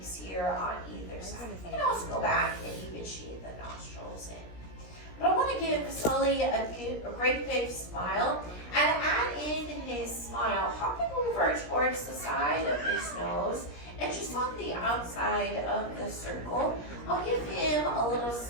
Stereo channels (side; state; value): right; late; 17 ms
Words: here on either side. You can also go back and even shade the nostrils in. But I want to give Sulley a great big smile and add in his smile, hopping over towards the side of his nose. And just on the outside of the circle, I'll give him a little